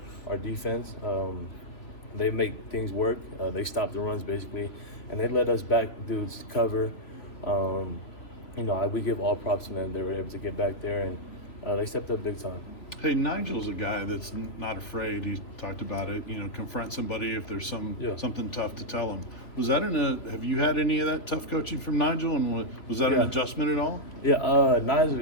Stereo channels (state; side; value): late; right; 2.8 ms